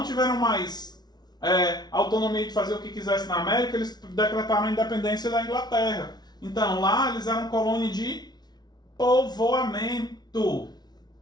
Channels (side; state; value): right; late; 0.19 ms